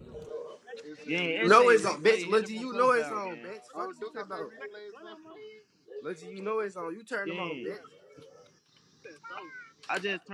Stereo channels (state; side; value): identical; both; correlation 1.00